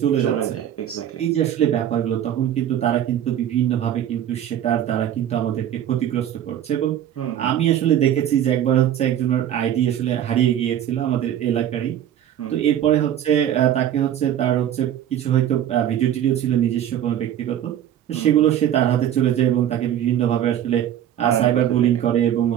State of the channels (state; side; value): quieter; left; 10.8 dB